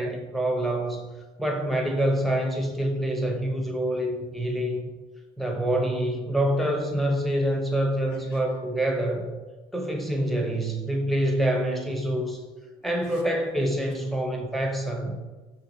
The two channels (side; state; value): both; normal; correlation 0.76